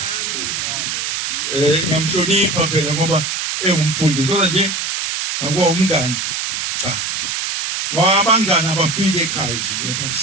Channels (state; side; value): noise; right; hiss, 2 dB below the sound